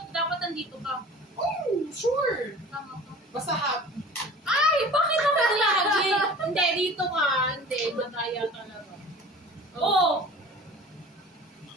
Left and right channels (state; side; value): normal; both; correlation 0.42